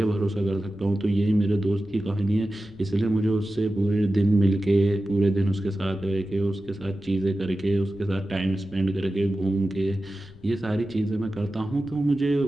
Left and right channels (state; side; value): noise; left; rumble, 22 dB below the sound